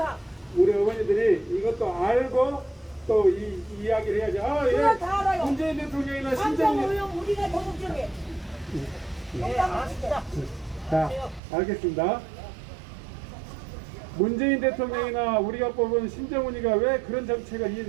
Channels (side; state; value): left; drops out; at 11.4 s